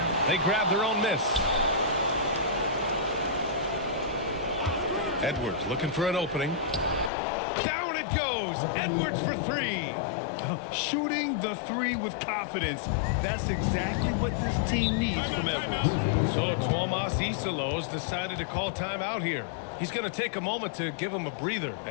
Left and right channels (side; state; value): right; drops out; at 7.1 s